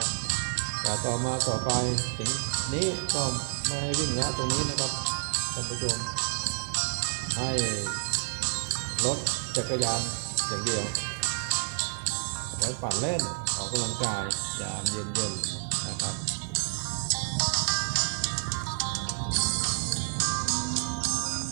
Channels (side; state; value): left; silent; 58 dB below the other